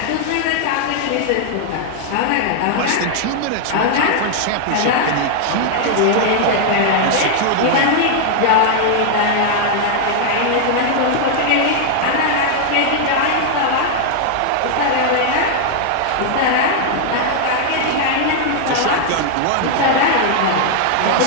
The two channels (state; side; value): different; both; correlation 0.00